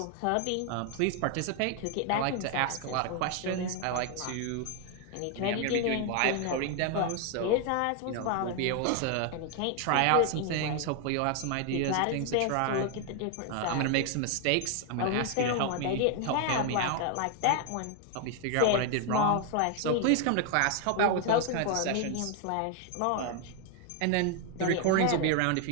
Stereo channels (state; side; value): different; both; correlation 0.00